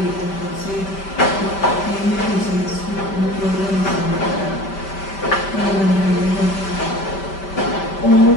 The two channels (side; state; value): right; late; 5.1 ms